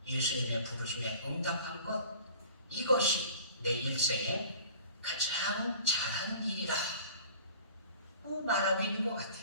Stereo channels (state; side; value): inverted; both; correlation -0.45